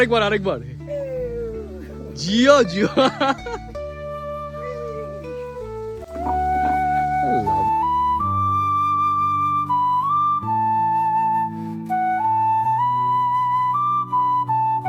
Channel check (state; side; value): identical; both; correlation 1.00